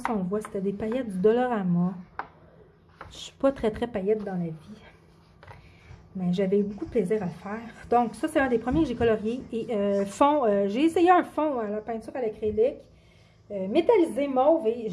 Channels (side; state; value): both; identical; correlation 1.00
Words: on le voit. C'était des paillettes du Dollarama. Je ne suis pas très paillette dans la vie. Mais j'avais eu beaucoup de plaisir à le faire. Donc, ça, c'est un des premiers que j'ai colorié. Et fond, j'ai essayé un fond à la peinture à l'acrylique. Métallisé mauve. Et